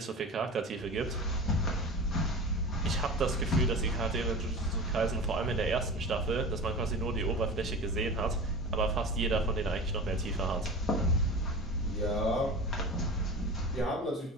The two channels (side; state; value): both; normal; correlation 0.32